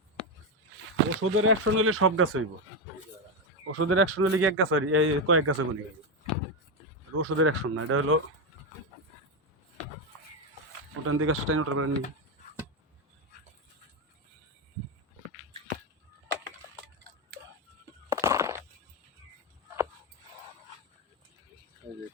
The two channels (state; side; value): normal; both; correlation 0.09